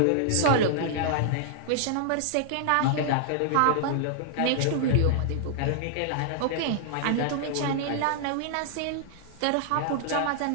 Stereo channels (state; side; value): different; both; correlation -0.01